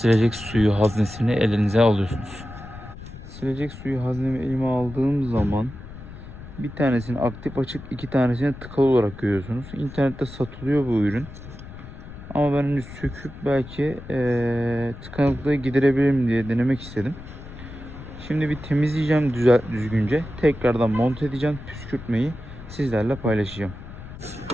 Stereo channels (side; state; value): left; noise; rumble, 14 dB below the sound